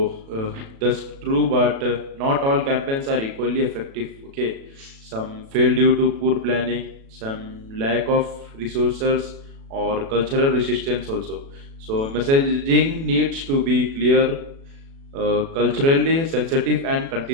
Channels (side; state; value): left; late; 36 ms